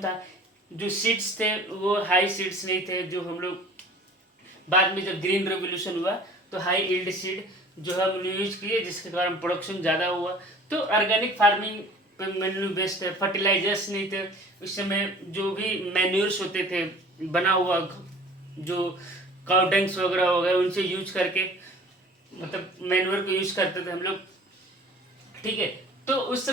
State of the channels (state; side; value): normal; both; correlation 0.47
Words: जो सीड्स थे वो हाई सीड्स नहीं थे, जो हम लोग बाद में जब ग्रीन रेवोल्यूशन हुआ तो हाई यील्ड सीड जो है हम यूज किए, जिसके कारण प्रोडक्शन ज़्यादा हुआ। तो ऑर्गेनिक फार्मिंग पे मेन्यू बेस्ड है। फर्टिलाइजर्स नहीं थे उस समय, जो भी मैन्यूर्स होते थे बना हुआ, जो काउडेंग्स वगैरह हो गए उनसे यूज करके, मतलब मैन्यूर को यूज करते थे हम लोग। ठीक है, तो उस